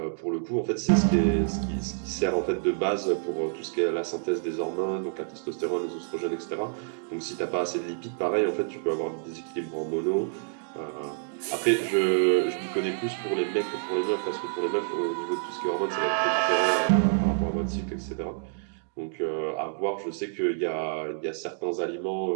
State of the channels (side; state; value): left; silent; digital silence